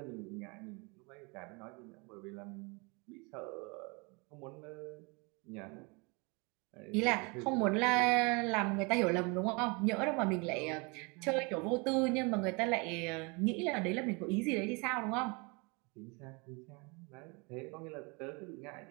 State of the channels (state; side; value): quieter; left; 29.7 dB